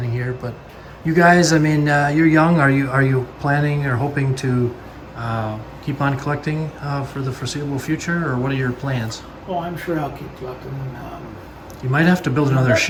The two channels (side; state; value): both; identical; correlation 1.00